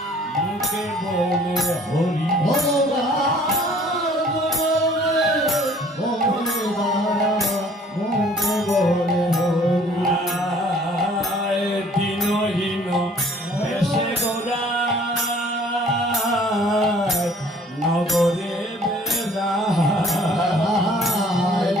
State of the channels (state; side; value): normal; both; correlation 0.55